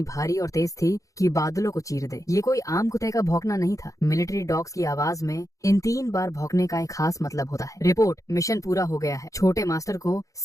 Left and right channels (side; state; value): right; late; 0.16 ms